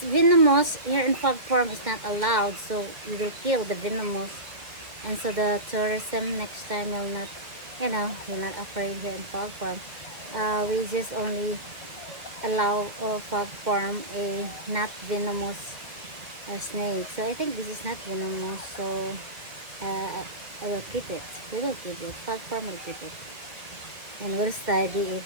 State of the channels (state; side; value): late; left; 2.3 ms